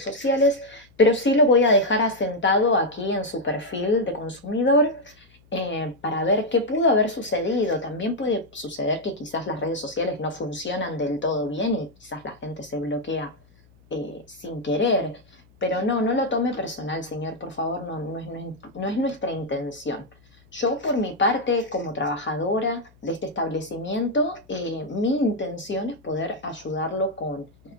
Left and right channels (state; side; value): noise; left; hum, 29 dB below the sound